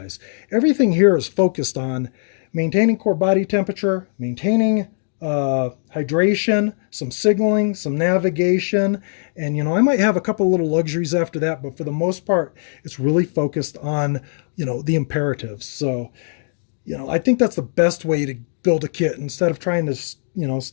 Everything here is focused on maintaining core body temperature, maintaining hydration, some signaling, some navigation, and I might have a couple little luxuries after that, but for the most part, it's really focused on the imperatives. So I think that's the best way to build a kit instead of trying to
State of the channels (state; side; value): silent; right; digital silence